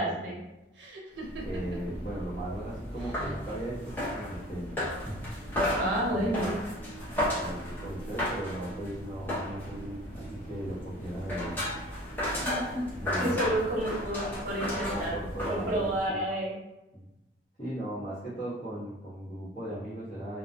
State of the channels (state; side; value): normal; both; correlation 0.43